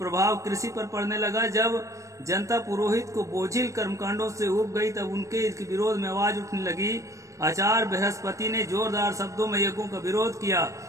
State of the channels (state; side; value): late; left; 0.15 ms